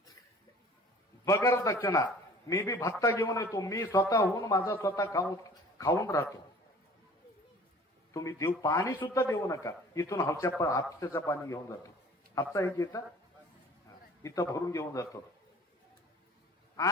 बगर दक्षिणा. मी बी भत्ता घेऊन येतो, मी स्वतःहून माझा स्वतः खाऊन राहतो. तुम्ही देऊ पाणी सुद्धा देऊ नका. इथून हापशाचं पाणी घेऊन जातो. हापसा एक येतं इथं भरून घेऊन जातो.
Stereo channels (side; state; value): both; normal; correlation 0.48